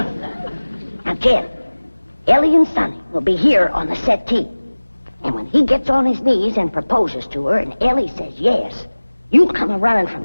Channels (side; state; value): both; inverted; correlation -1.00